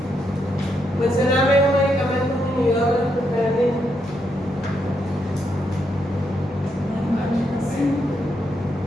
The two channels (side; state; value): both; normal; correlation 0.79